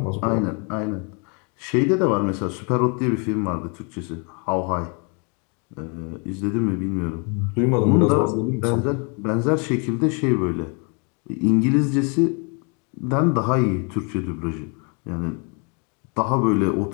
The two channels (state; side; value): quieter; right; 35.4 dB